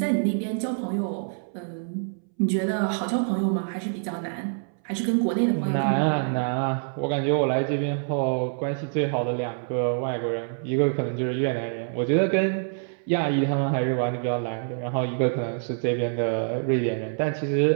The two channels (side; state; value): left; silent; 61 dB below the other